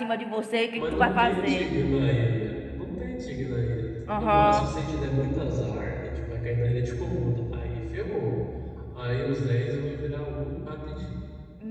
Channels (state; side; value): identical; both; correlation 1.00